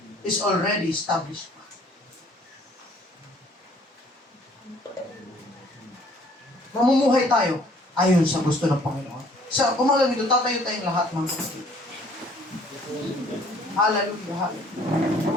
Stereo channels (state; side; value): normal; both; correlation 0.57